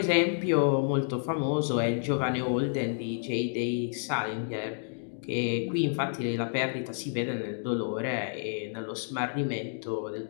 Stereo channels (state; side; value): silent; right; digital silence